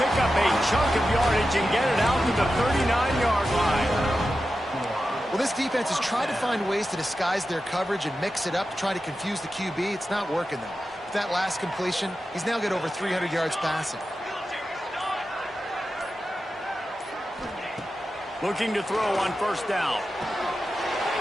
up a chunk of yardage and get it out to the 39-yard line. Well, this defense is trying to find ways to disguise their coverage and mix it up to try to confuse the QB. It's not working, though. With that last completion, he's now got over 300 yards passing. Looking to throw on first down.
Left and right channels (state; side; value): normal; both; correlation 0.92